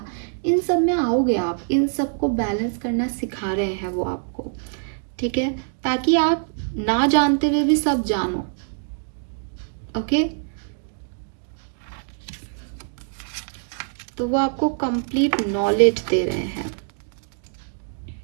इन सब में आओगे आप, इन सब को बैलेंस करना सिखा रहे हैं वो आपको, ठीक है, ताकि आप ना जानते हुए भी सब जानो। ओके, तो वो आपको कंप्लीट नॉलेज दे रहे हैं।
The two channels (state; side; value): silent; left; digital silence